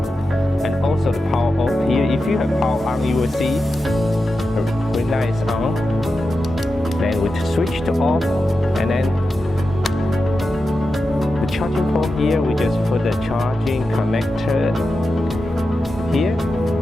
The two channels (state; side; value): normal; both; correlation 0.90